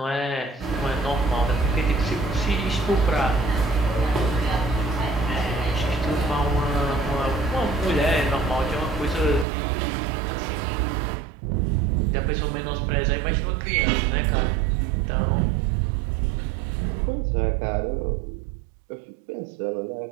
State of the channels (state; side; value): drops out; left; at 9.5 s